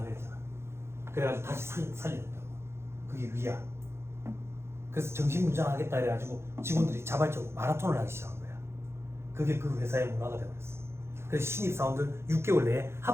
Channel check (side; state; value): left; late; 0.12 ms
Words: 그래가지고 다시 살려냈다고. 그게 위야. 그래서 정신문장하겠다 해가지고 직원들이 자발적으로 마라톤을 하기 시작한 거야. 그게 그 회사의 문화가 되어버렸어. 그래서 신입사원들 6개월 내에